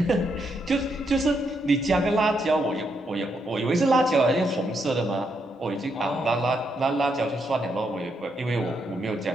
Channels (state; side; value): normal; both; correlation 0.79